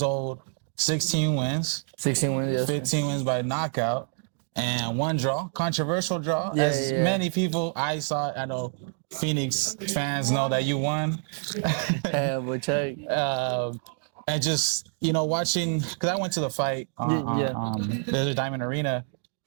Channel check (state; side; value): silent; left; 60 dB below the other